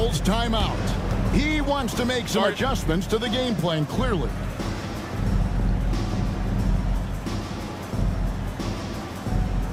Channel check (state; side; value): identical; both; correlation 1.00